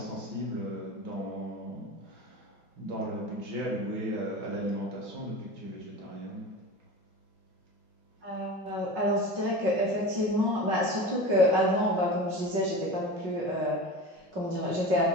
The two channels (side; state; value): left; late; 5.4 ms